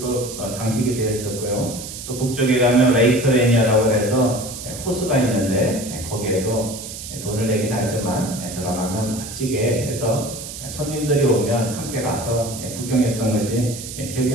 장식이 되어 있었고요. 또 북쪽에 가면 레이크 레니어라고 해서 호수가 있는데 거기에도 돈을 내긴 하지만 들어가면 멋지게 해서 손님들이 오면 함께 가서 구경했던 것이 기억이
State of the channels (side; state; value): right; noise; hiss, 10 dB below the sound